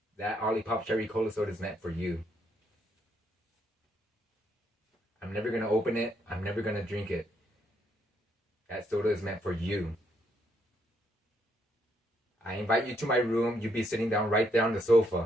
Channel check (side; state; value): both; normal; correlation 0.74